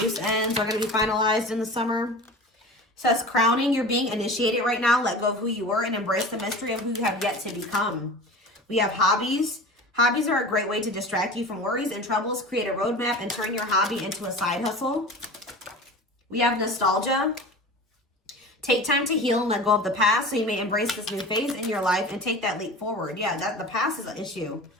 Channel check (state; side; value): normal; both; correlation 0.35